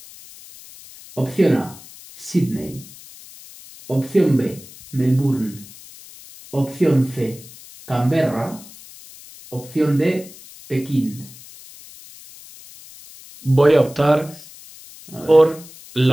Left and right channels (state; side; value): noise; left; hiss, 19 dB below the sound